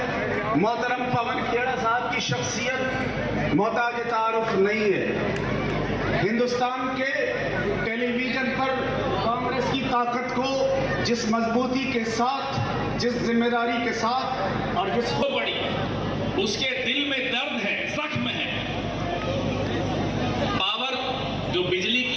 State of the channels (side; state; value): both; identical; correlation 1.00